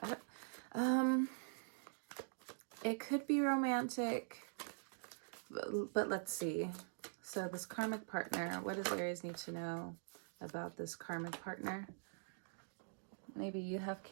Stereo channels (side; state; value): left; silent; digital silence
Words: It could be romantic, but let's see. So this karmic partner, what does Aries need to know about this karmic partner? Maybe you have